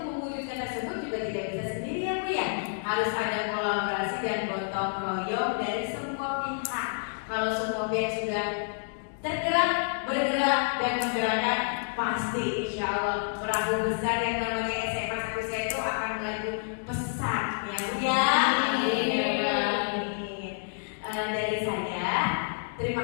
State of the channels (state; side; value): silent; right; digital silence